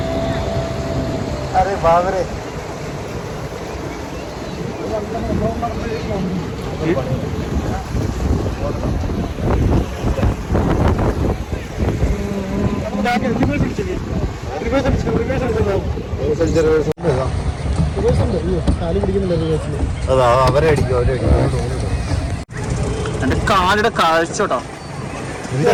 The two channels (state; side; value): identical; both; correlation 1.00